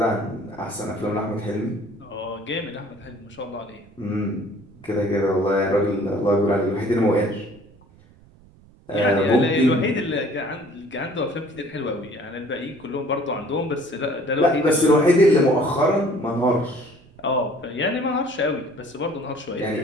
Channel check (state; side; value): noise; right; rumble, 26 dB below the sound